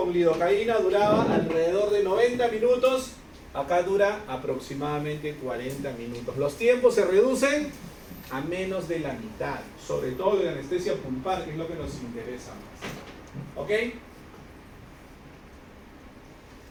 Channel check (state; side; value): identical; both; correlation 1.00